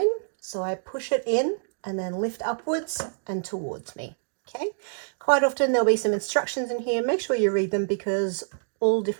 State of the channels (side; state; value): left; silent; digital silence